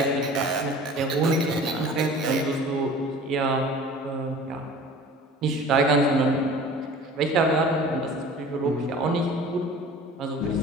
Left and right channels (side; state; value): both; normal; correlation 0.43